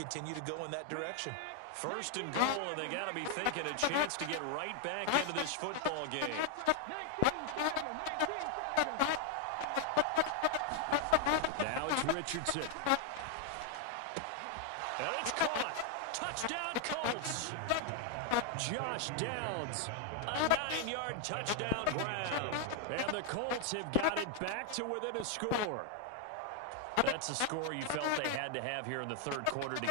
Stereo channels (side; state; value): both; different; correlation 0.00